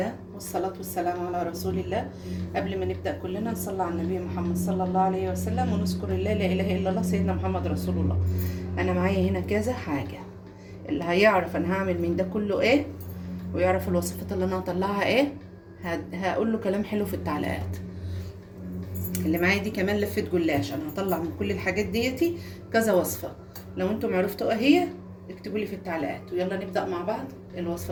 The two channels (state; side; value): identical; both; correlation 1.00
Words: والصلاة والسلام على رسول الله. قبل ما نبدأ كلنا نصلي على النبي محمد صلى الله عليه وسلم ونذكر الله لا إله إلا الله سيدنا محمد رسول الله. أنا معايا هنا كذا حاجة، اللي هيعرف أنا هعمل من ده كله إيه ويعرف الوصفات اللي أنا هطلعها إيه هقول له كلام حلو في التعليقات. اللي معايا دي كمان لفة جلاش، أنا هطلع من كل الحاجات ديتي كذا وصفة. لو أنتم عرفتوا إيه هي اكتبوا لي في التعليقات، ويلا نبدأ مع بعض الوصفة